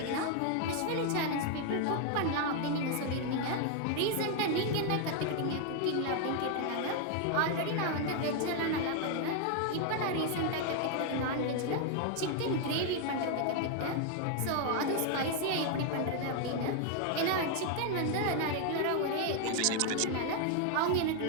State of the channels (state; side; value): different; both; correlation 0.00